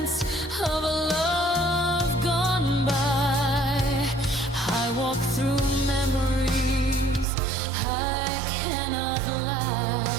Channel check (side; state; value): left; drops out; at 7.2 s